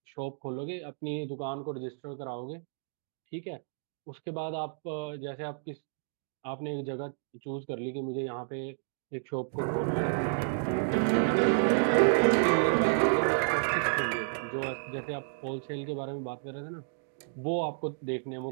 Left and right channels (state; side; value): silent; left; digital silence